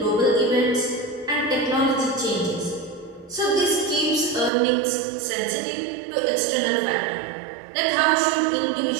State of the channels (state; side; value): drops out; left; at 4.5 s